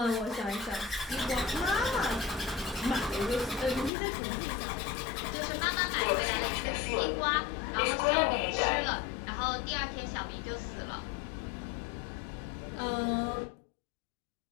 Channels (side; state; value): right; drops out; at 3.9 s